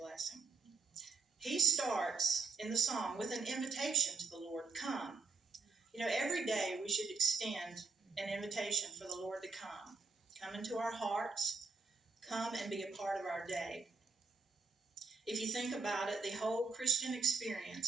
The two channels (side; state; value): left; quieter; 4.4 dB